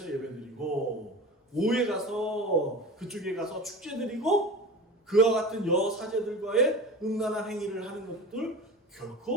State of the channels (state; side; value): normal; both; correlation 0.32